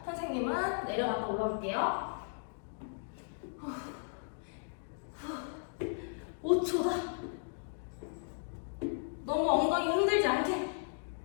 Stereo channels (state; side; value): silent; right; digital silence